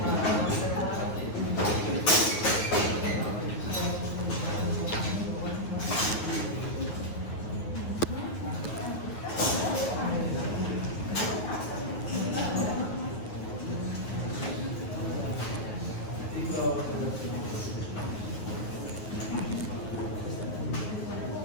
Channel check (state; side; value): late; right; 9.4 ms